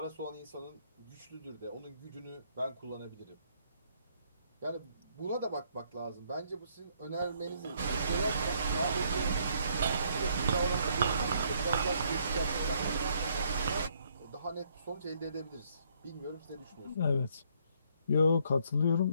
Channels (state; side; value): inverted; both; correlation -0.68